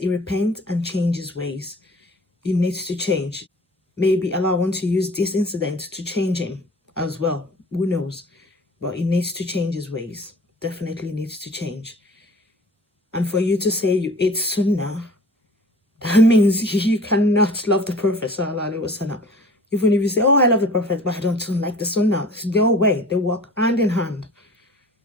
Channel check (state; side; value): normal; both; correlation 0.46